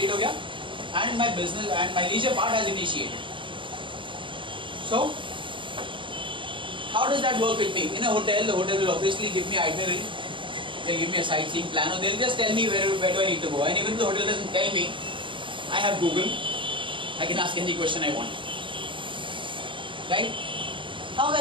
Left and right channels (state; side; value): late; left; 0.24 ms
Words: हो गया and my business and my leisure part has initiated. So how does that work with me? In a hotel, the hotel will obviously give me itinerary. They'll give me a sightseeing plan, or they'll just tell me where do I need to go. And even if the hotel doesn't tell me, I have Google. I can ask any question I want. Right?